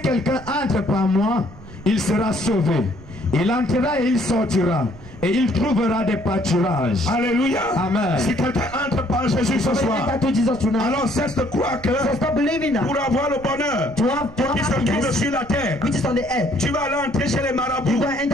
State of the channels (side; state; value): right; noise; rumble, 19 dB below the sound